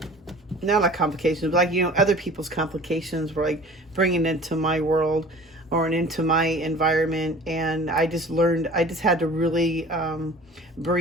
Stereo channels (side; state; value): both; normal; correlation 0.44